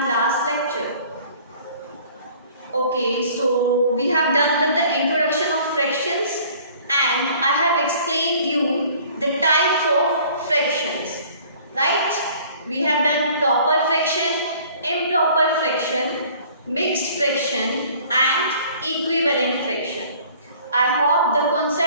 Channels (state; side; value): inverted; both; correlation -0.52